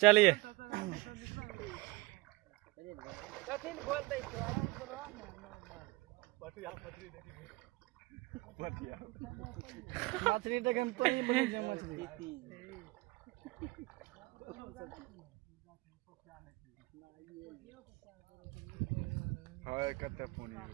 चलिए मछली देखे में तो नहीं बनी जा मछली हाय कते फोन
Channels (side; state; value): left; quieter; 22.7 dB